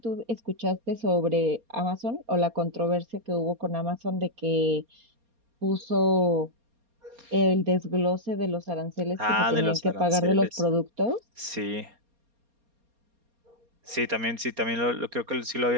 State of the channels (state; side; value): late; left; 4.3 ms